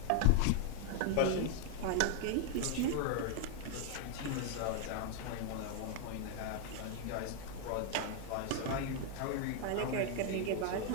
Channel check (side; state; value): both; different; correlation 0.00